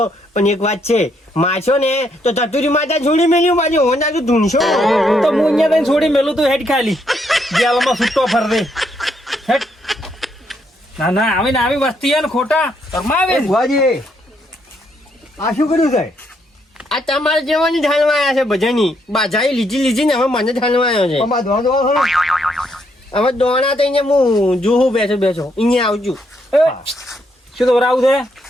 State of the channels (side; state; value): both; normal; correlation 0.74